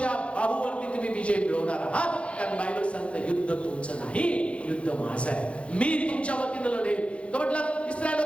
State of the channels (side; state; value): right; late; 0.061 ms